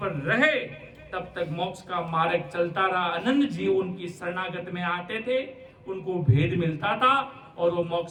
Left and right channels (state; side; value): identical; both; correlation 1.00